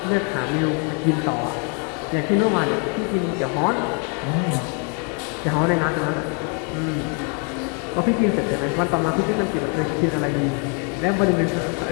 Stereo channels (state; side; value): quieter; right; 37.8 dB